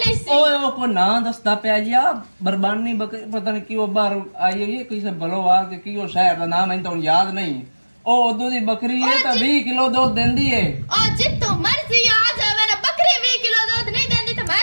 ਸੀ ਓਏ ਉਹ ਕੋ ਨਾਂ ਦੱਸਦਾ ਪਿਆ ਜੀ ਆ ਬਰਬਾਨੀ ਬੱਕਰੀ ਪਤਾ ਨਹੀਂ ਕਿਉਂ ਬਾਹਰ ਆਈ ਹੋਈ ਹੈ ਕਿਸੇ ਬਲੋਵਾਲ ਕੇ ਕਿਉਂ ਸ਼ਹਿਰ ਦਾ ਨਾਮ ਮੈਨੂੰ ਤਾਂ ਯਾਦ ਨਹੀਂ ਉਹ ਉਦੋਂ ਦੀ ਬੱਕਰੀ ਹੈ ਤਾਂ 20 ਕਿਲੋ ਦੁੱਧ ਦਿੰਦੀ ਹੈ ਉਹ ਜਿੱਤੋਂ ਮਰਜ਼ੀ ਆ ਜਾਵੇ ਨਾ ਬੱਕਰੀ 20 ਕਿਲੋ ਦੁੱਧ ਨਹੀਂ ਦਿੰਦੀ ਤਾਂ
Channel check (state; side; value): inverted; both; correlation -1.00